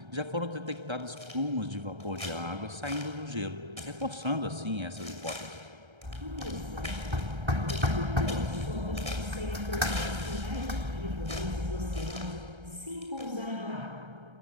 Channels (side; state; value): left; late; 1.3 ms